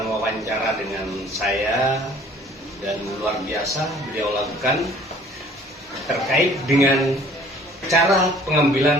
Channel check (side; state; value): both; normal; correlation 0.53